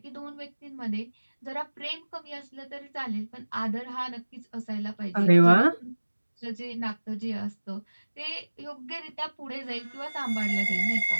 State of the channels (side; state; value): both; inverted; correlation -1.00